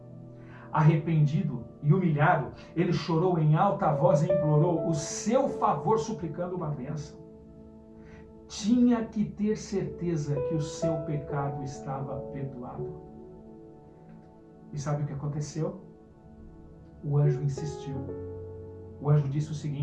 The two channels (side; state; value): both; identical; correlation 1.00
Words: Arrependido e humilhado, ele chorou em alta voz e implorou o seu favor, suplicando uma bênção. Tinha que ter certeza que o seu pecado estava perdoado. E sabe o que aconteceu? O anjo insistiu. O anjo disse o